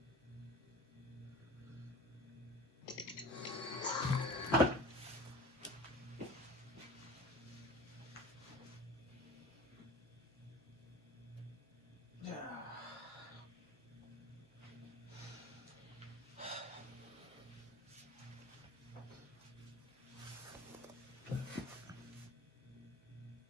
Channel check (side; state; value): both; normal; correlation 0.39